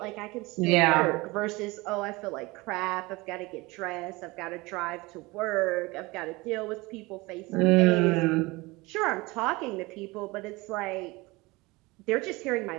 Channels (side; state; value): left; quieter; 22.9 dB